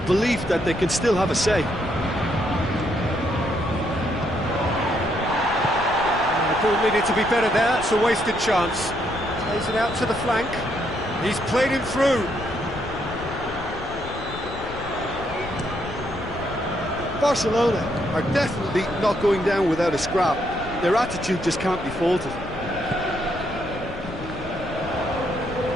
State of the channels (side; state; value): left; noise; rumble, 13 dB below the sound